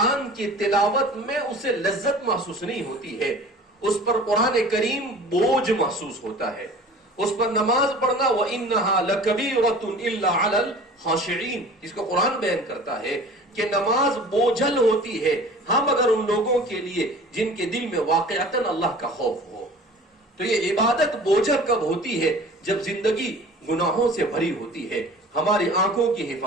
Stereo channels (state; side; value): normal; both; correlation 0.43